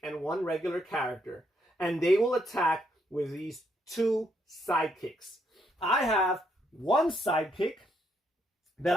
and 1 regular character. And they will attack with these 2 sidekicks. I have 1 sidekick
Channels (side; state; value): both; normal; correlation 0.74